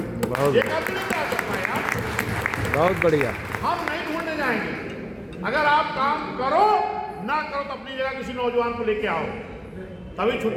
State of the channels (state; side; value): identical; both; correlation 1.00